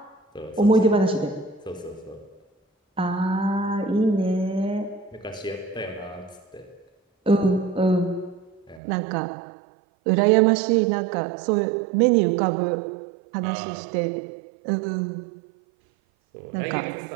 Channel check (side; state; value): left; drops out; at 8.8 s